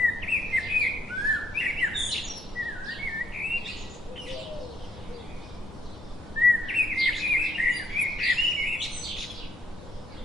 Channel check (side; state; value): both; normal; correlation 0.70